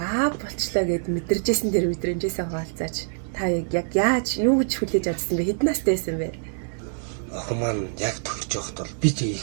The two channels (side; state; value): left; silent; digital silence